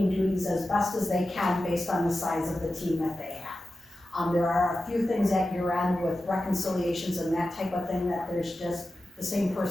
duties as best as they can based on the size of the team that they have. There are a few things at year end with reconciliations and that type of thing that there's just the same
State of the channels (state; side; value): normal; both; correlation 0.93